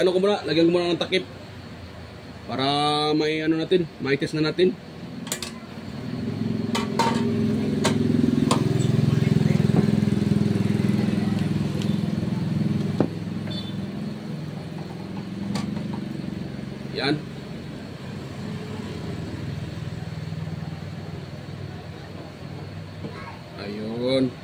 lagyan ko muna ng takip para may may test na natin. Yan. Ayun.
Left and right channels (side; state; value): both; identical; correlation 1.00